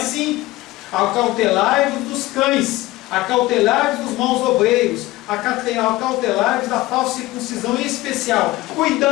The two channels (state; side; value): quieter; right; 18.5 dB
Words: Acautelai-vos dos cães, acautelai-vos dos maus obreiros, acautelai-vos da falsa circuncisão, em especial.